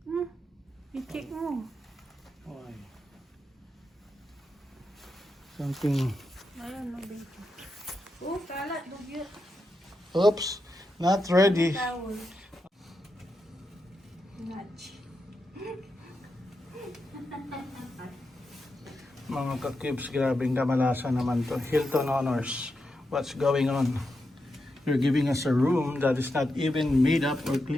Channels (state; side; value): normal; both; correlation 0.86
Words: I-check mo. Okay. Something. Ayun, nabito. Oh, kalat, dugyot. Oops, not ready. Towel. Nudge. Mga ka-cubes, grabing kamalasan naman to. Hilton Honors. What's going on? You're giving us a room that is not even made up or